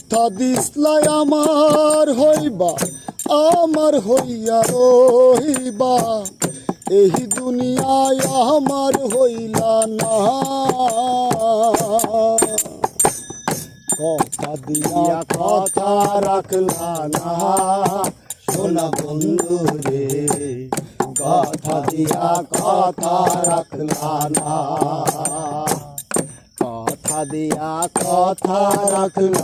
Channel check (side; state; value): both; identical; correlation 1.00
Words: দিসলাই আমার হইবা, আমার হইয়া রইবা, এই দুনিয়ায় আমার হইলা না। কথা দিয়া কথা রাখলা না সোনা বন্ধু রে, কথা দিয়া কথা রাখলা না, কথা দিয়া কথা